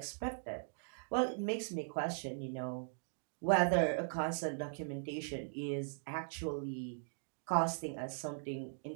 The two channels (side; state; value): left; silent; digital silence